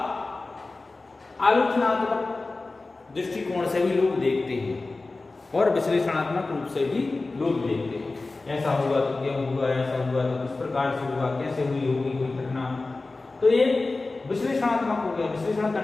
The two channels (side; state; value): right; quieter; 3.4 dB